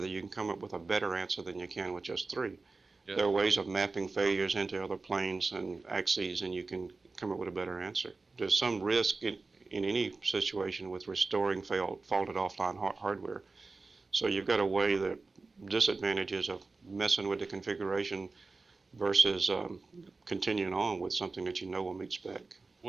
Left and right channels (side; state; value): left; quieter; 3.8 dB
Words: you can come up with a better answer than you can with just 3. Yeah. There are ways of mapping failures into other planes and axes, and you can come up with a better answer. There's some risk in any situation with restoring faulted offline hardware. So you've got to weigh the disadvantages of messing with the configuration versus continuing on with something that you know will meet spec.